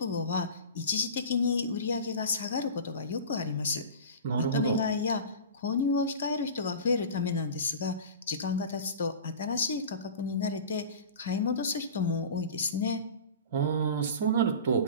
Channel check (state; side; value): inverted; both; correlation -0.34